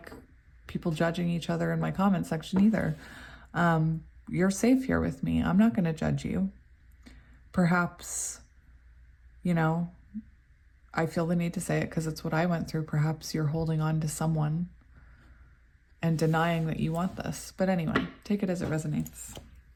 people judging each other in my comment section either. You're safe here with me. I'm not going to judge you. Perhaps, you know, I feel the need to say it because it's what I went through. Perhaps you're holding on to someone and denying that you want this. But anyway, take it as it resonates.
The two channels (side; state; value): both; identical; correlation 1.00